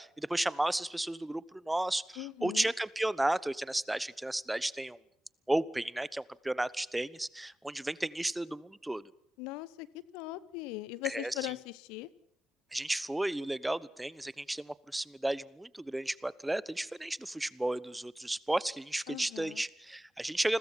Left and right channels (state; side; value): normal; both; correlation 0.95